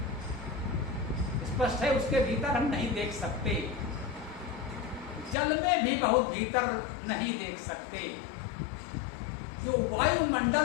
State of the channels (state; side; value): drops out; right; at 5.4 s